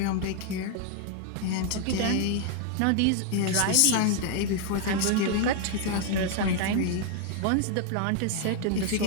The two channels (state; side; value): different; both; correlation 0.00